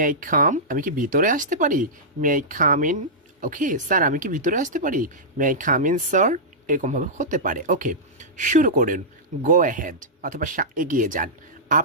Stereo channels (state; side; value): normal; both; correlation -0.13